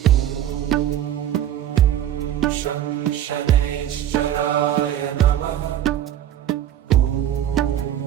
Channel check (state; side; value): quieter; left; 11.1 dB